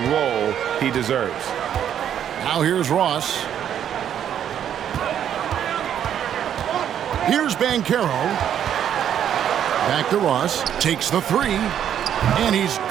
role he deserves. Now here's Ross. Here's Banchero. Back to Ross. Takes the three. And he's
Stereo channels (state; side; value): quieter; left; 9.6 dB